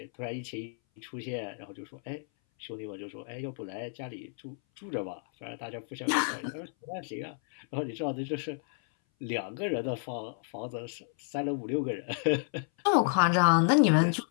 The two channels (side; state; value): right; silent; 57 dB below the other